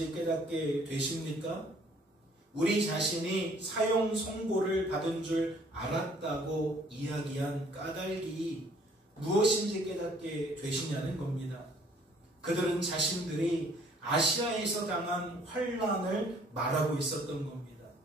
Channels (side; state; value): both; normal; correlation 0.59